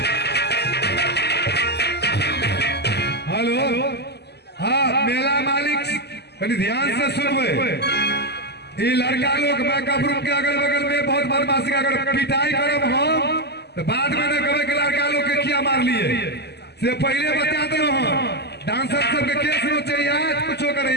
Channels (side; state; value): right; late; 0.49 ms